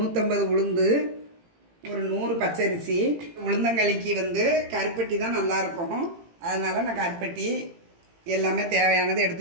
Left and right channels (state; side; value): late; left; 18 ms